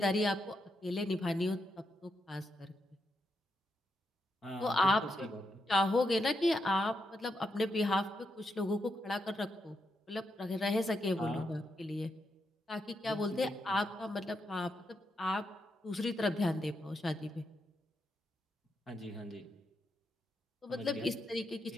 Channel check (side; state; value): both; normal; correlation 0.83